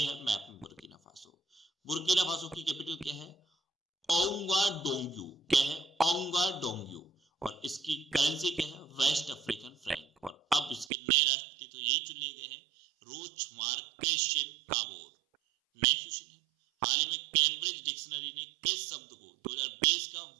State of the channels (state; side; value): drops out; left; at 10.9 s